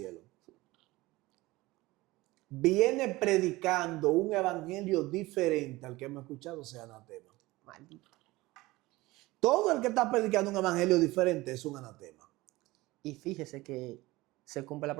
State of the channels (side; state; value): left; quieter; 20.0 dB